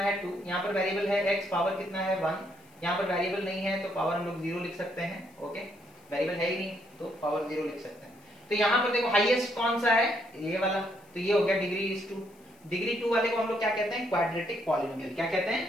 2, यहां पर वेरिएबल है x, पावर कितना है 1, यहां पर वेरिएबल नहीं है तो पावर हम लोग 0 लिख सकते हैं। ओके, वेरिएबल है ही नहीं तो पावर 0 लिख सकते हैं। तो यहां पर देखो हाईएस्ट कौन सा है, ये वाला, तो ये हो गया डिग्री 2। डिग्री 2 वाले को हम लोग क्या कहते हैं, क्वाड्रेटिक पॉलिनोमियल। क्या कहते हैं,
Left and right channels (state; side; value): noise; left; hiss, 30 dB below the sound